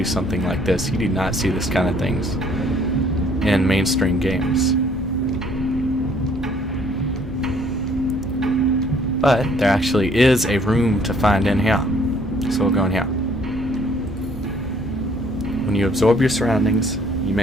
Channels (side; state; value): both; normal; correlation 0.61